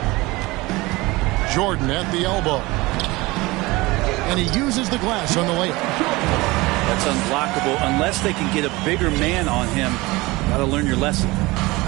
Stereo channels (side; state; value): left; quieter; 21.8 dB